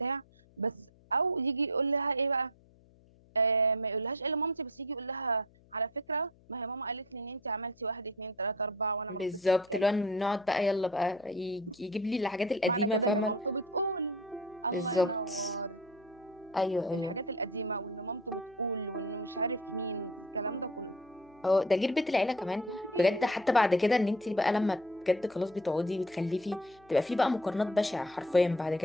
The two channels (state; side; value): noise; left; hum, 28 dB below the sound